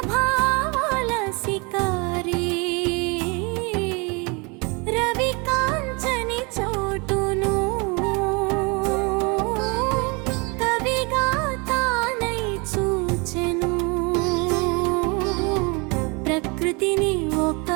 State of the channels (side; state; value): left; quieter; 29.8 dB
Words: భావాల సికారి రవి కాంచని చోటును కవిగా తానై చూచెను ప్రకృతిని ఒక